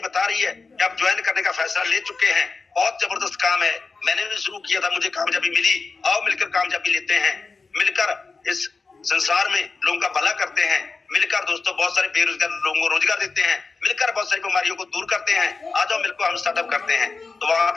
रही है कि आप ज्वाइन करने का फैसला ले चुके हैं। बहुत जबरदस्त काम है, मैंने भी शुरू किया था, मुझे कामयाबी मिली। आओ मिलकर कामयाबी लेते हैं, मिलकर इस संसार में लोगों का भला करते हैं, मिलकर दोस्तों बहुत सारे बेरोजगार लोगों को रोजगार देते हैं, मिलकर बहुत सारी बीमारियों को दूर करते हैं। आ जाओ मिलकर हम स्टार्टअप करते हैं। तो वहां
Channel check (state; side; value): quieter; right; 4.2 dB